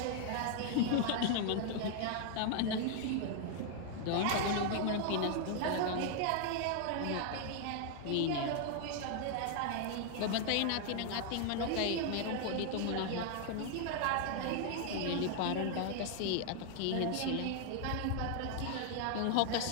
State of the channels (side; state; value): both; different; correlation 0.00